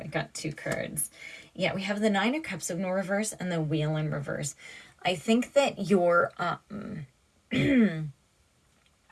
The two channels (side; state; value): both; identical; correlation 1.00